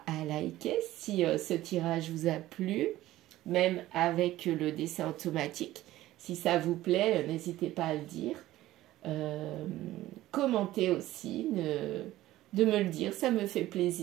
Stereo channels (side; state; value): left; quieter; 15.5 dB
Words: à liker si ce tirage vous a plu, même avec le dessin automatique. Si ça vous plaît, n'hésitez pas à le dire. Commentez aussi, de me le dire, ça me fait